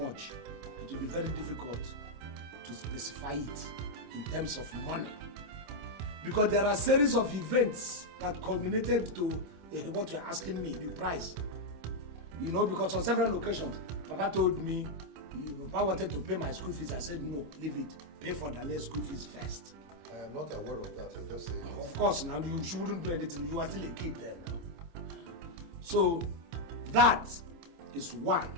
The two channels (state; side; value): late; left; 26 ms